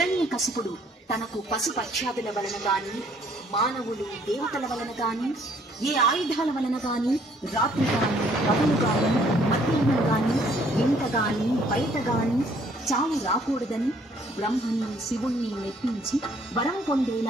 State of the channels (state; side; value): normal; both; correlation 0.63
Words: తనకు పశుపక్ష్యాదుల వలన గాని, మానవులు దేవతల వలన గాని, ఏ ఆయుధాల వలన గాని, రాత్రి గాని పగలు గాని మధ్యాహ్నం గాని ఇంట గాని బయట గాని చావు రాకూడదని బ్రహ్మని శివుణ్ణి మెప్పించి వరం